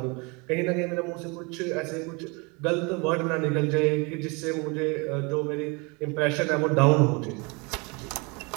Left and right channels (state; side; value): quieter; left; 29.3 dB